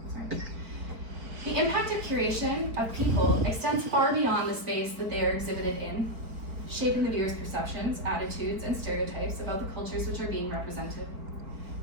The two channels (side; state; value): left; late; 4.4 ms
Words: The impact of curation of people extends far beyond the space that they are exhibited in, shaping the viewer's perceptions, attitudes, and stereotypes about the cultures which are being represented.